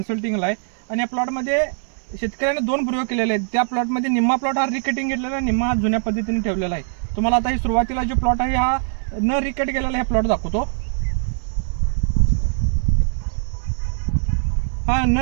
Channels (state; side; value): silent; left; 63 dB below the other